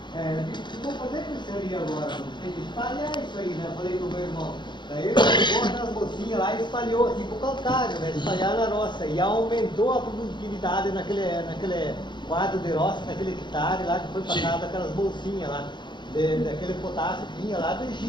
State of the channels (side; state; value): right; late; 0.22 ms